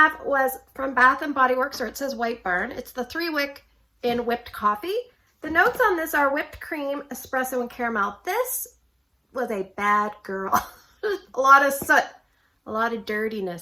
was from Bath & Body Works, or it says White Barn. It's the 3-wick in whipped coffee. The notes on this are whipped cream, espresso, and caramel. This was a bad girl. A lot of soot, a lot of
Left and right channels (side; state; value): both; identical; correlation 1.00